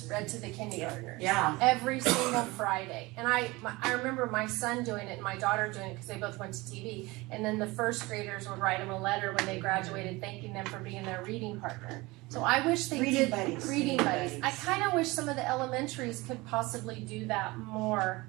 read to the kindergartners. Yeah. Every single Friday. And I remember my son doing it and my daughter doing it because they both went to TV. And then the 1st graders would write them a letter when they graduated thanking them for being their reading partner. So I wish they did reading buddies. I kind of wish some of the elementaries could possibly do that more.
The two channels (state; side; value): quieter; left; 22.4 dB